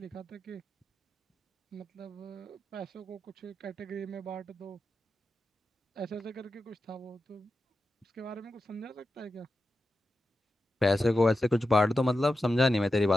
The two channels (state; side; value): normal; both; correlation 0.90